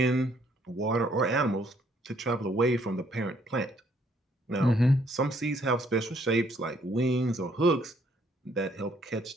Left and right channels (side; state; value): both; normal; correlation 0.67